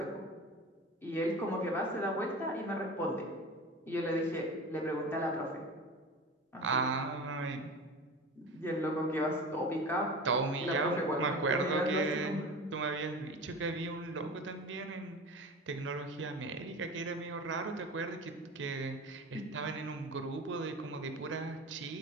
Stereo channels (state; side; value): normal; both; correlation 0.33